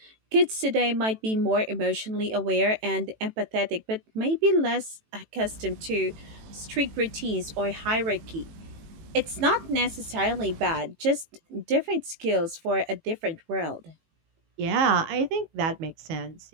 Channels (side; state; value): left; late; 18 ms